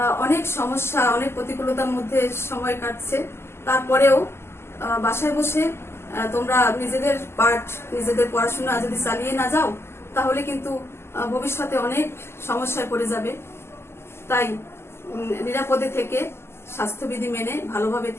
অনেক সমস্যা, অনেক প্রতিকূলতার মধ্যে সময় কাটছে, তারপরেও বাসায় বসে তোমরা নিজেদের পাঠ, নিজেদের পড়াশোনা যদি চালিয়ে না যাও তাহলে কিন্তু ভবিষ্যতে অনেক সমস্যায় পড়ে যাবে। তাই নিরাপদে থেকে, স্বাস্থ্যবিধি মেনে ভালোভাবে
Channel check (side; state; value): right; late; 0.12 ms